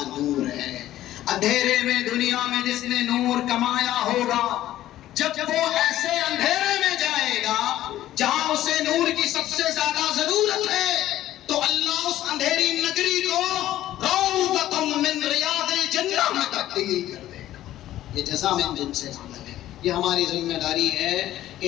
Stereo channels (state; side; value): quieter; right; 13.7 dB